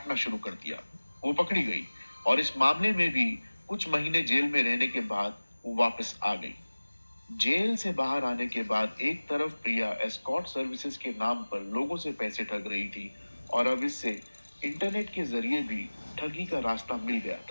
शुरू कर दिया। वो पकड़ी गई और इस मामले में भी कुछ महीने जेल में रहने के बाद वो वापस आ गई। जेल से बाहर आने के बाद एक तरफ प्रिया एस्कॉर्ट सर्विसेज के नाम पर लोगों से पैसे ठग रही थी और अब इससे इंटरनेट के जरिए भी ठगी का रास्ता मिल गया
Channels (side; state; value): both; inverted; correlation -1.00